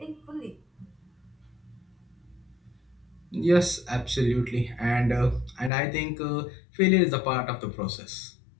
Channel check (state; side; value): drops out; right; at 5.7 s